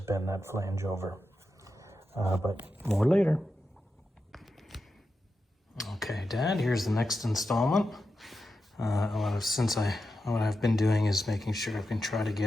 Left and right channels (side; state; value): both; normal; correlation 0.90